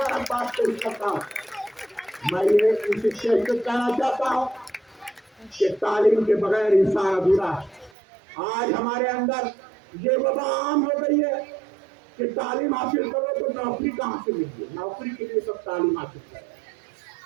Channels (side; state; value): left; drops out; at 7.9 s